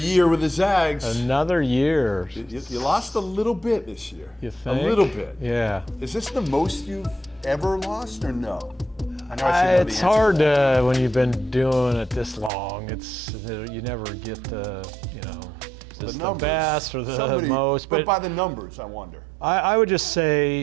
with the Zags. Another year. You lost a little bit this year. You think? A little bit. Yeah. Is this the most you've ever lost or no? I know I should know It's the hard to, when you've been doing it this long, you never get the, is this the best or the most. But by the numbers, I wonder. I would just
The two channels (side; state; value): left; drops out; at 12.5 s